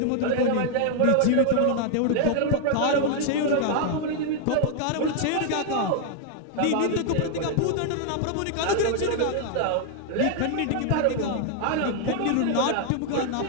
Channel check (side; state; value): both; different; correlation 0.00